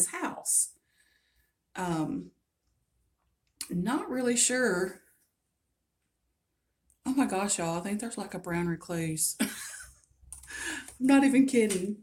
house. Um, Not really sure. Oh my gosh, y'all, I think there's like a brown recluse. I'm not even kidding.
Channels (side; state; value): both; identical; correlation 1.00